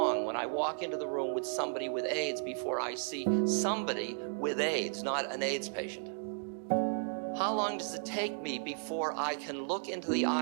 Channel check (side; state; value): left; silent; digital silence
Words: when I walk into the room with somebody with AIDS before I see somebody with AIDS, not an AIDS patient? How long does it take me before I can look into the